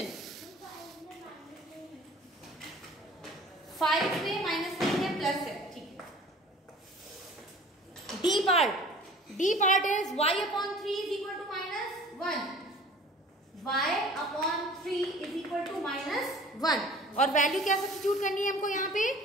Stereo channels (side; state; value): both; normal; correlation 0.46